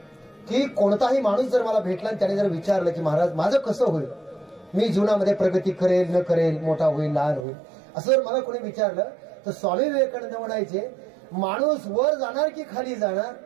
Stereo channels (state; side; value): drops out; left; at 7.5 s